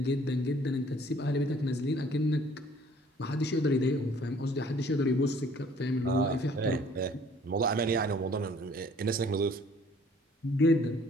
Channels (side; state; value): both; normal; correlation 0.57